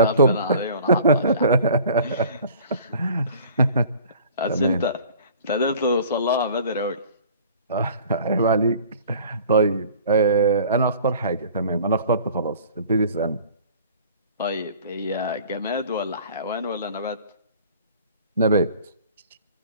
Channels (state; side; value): inverted; both; correlation -0.48